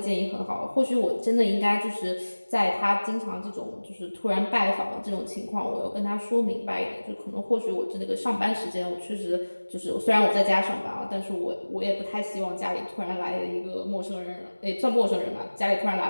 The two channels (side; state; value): both; inverted; correlation -1.00